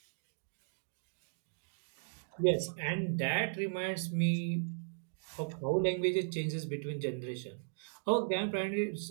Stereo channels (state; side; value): silent; left; digital silence